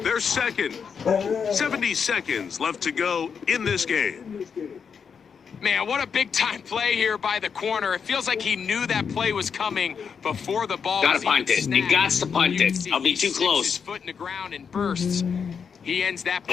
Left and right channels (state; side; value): quieter; right; 6.5 dB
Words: They're 2nd. 70 seconds left to go in this game. Man, what a big-time play here by the corner. It feels like he knew that play was coming before the ball Gotta was even punt it. snapped. You got to punt You can it. see I'll be he too sticks close. his foot in the ground and bursts. He ends that